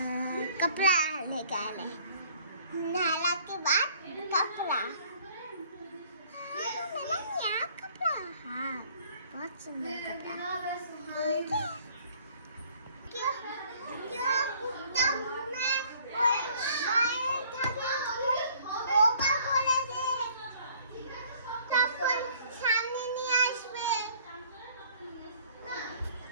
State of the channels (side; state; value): both; inverted; correlation -0.57